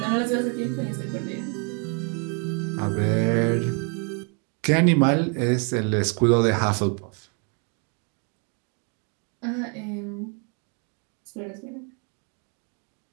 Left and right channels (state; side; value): quieter; left; 37.5 dB